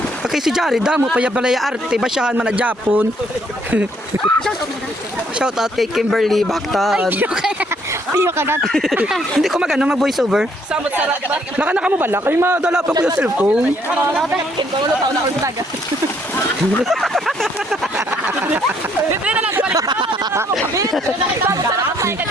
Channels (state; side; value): normal; both; correlation 0.68